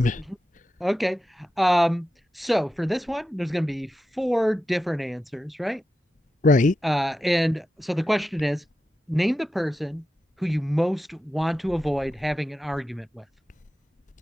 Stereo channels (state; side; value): normal; both; correlation 0.90